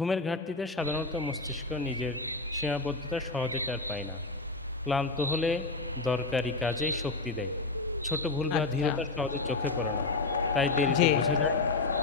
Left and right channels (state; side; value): quieter; right; 3.6 dB